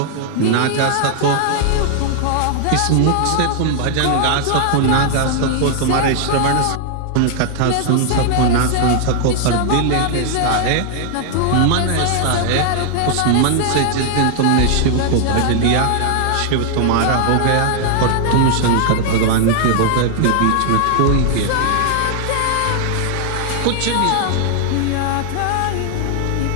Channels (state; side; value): different; both; correlation 0.00